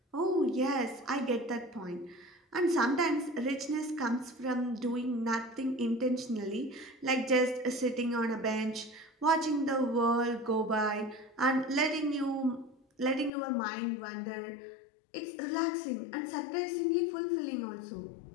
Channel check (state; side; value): drops out; right; at 13.3 s